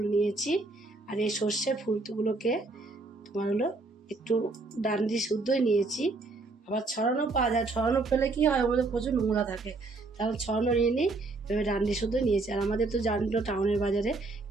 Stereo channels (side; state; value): left; quieter; 3.5 dB